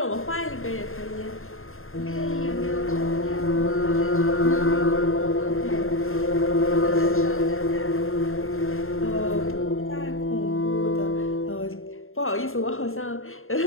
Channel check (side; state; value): right; late; 0.61 ms